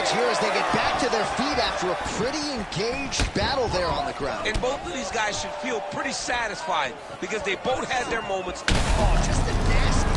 here as they get back to their feet after a pretty engaged battle there on the ground. And both of these guys should feel pretty satisfied because they both had their moments. Oh, just a nasty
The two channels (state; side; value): identical; both; correlation 1.00